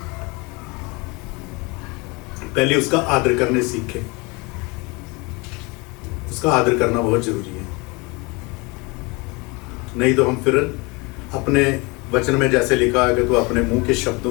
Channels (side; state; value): right; quieter; 27.2 dB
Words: पहले उसका आदर करने सीखें। उसका आदर करना बहुत जरूरी है, नहीं तो हम फिर अपने वचन में जैसे लिखा है कि तो अपने मुंह के